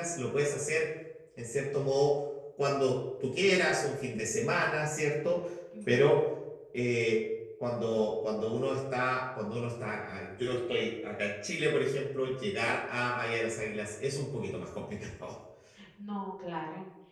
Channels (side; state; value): both; identical; correlation 1.00